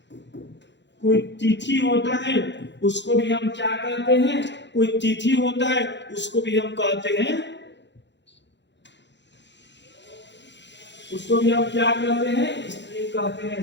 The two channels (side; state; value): right; late; 0.52 ms